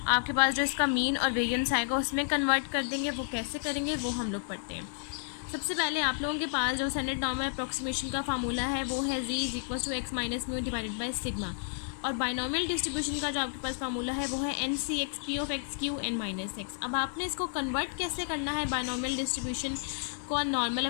आपके पास जो इसका मीन और वेरिएंस आएगा उसमें कन्वर्ट कर देंगे। वो कैसे करेंगे वो हम लोग पढ़ते हैं। सबसे पहले आप लोगों के पास जो स्टैंडर्ड नॉर्मल अप्रॉक्सीमेशन का फार्मूला है वो है Z is equal to X minus mu divided by sigma. और बायनॉमियल डिस्ट्रीब्यूशन का जो आपके पास फार्मूला है वो है N C X P of X Q N minus X. अब आपने इसको कन्वर्ट कैसे करना है बायनॉमियल डिस्ट्रीब्यूशन को नॉर्मल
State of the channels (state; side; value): silent; right; 57 dB below the other